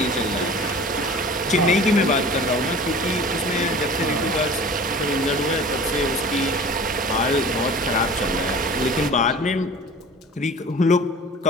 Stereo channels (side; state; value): both; normal; correlation 0.41